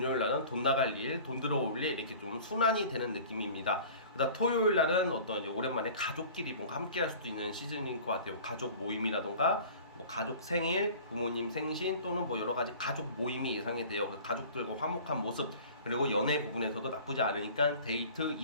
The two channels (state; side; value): inverted; both; correlation -0.43